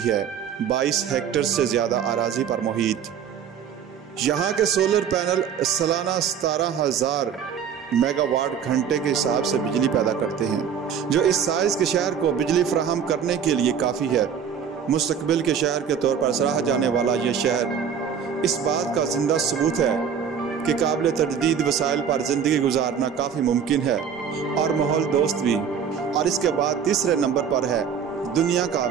है। 22 हेक्टेयर से ज़्यादा अराज़ी पर मुहित यहाँ के सोलर पैनल सालाना 17,000 मेगावाट घंटे के हिसाब से बिजली पैदा करते हैं, जो इस साइज़ के शहर को बिजली फराहम करने के लिए काफ़ी है। मुस्तकबिल के शहर के तौर पर सराहा जाने वाला यह शहर इस बात का जिंदा सबूत है कि काबिल तजदीद वसाइल पर ज़िंदगी गुजारना काफ़ी मुमकिन है और माहौल दोस्त भी। और इसके बाद तीसरे नंबर पर है दुनिया का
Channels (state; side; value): quieter; left; 7.6 dB